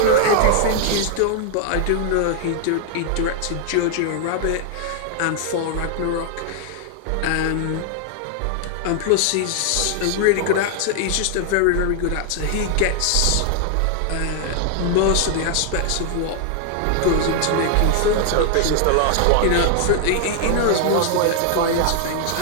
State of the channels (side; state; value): both; different; correlation 0.00